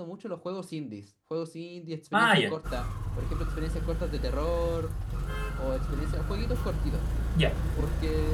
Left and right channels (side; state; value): both; identical; correlation 1.00